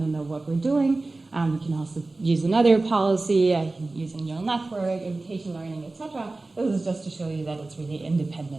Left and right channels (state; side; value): quieter; left; 3.2 dB